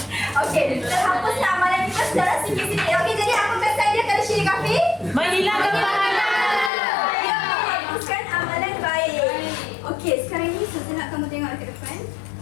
Okey, terhapuslah amalan kita secara sikit-sikit. Okey, jadi apa kesan dia kalau syirik khafi? Menghilangkan pahala. Ya, menghapuskan amalan baik. Okey, sekarang ni saya nak kamu tengok ke depan.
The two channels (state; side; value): drops out; right; at 6.7 s